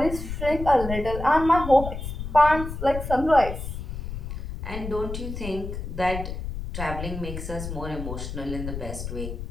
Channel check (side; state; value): left; noise; rumble, 7 dB below the sound